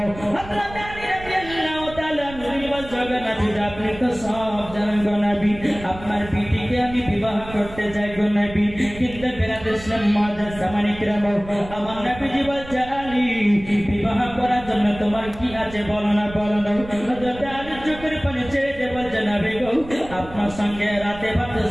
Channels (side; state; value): right; noise; rumble, 15 dB below the sound